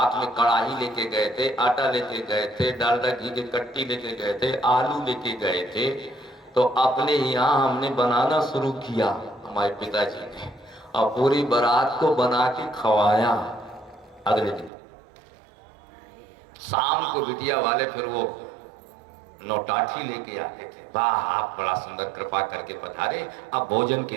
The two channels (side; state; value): left; drops out; at 14.7 s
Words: में कढ़ाई लेके गए थे, आटा लेके गए थे, डालडा घी की कट्टी लेके गए थे, आलू लेके गए थे। तो अपने यहाँ हमने बनाना शुरू किया, हमारे पिताजी ने, और पूरी बारात को बना के खवाया। अगले दिन शाम को बिटिया वाले फिर वो नौटाठी लेके आते थे, वाह आप बड़ा सुंदर कृपा करके पधारे, अब भोजन के